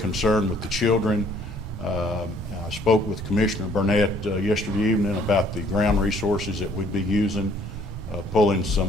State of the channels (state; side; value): normal; both; correlation 0.61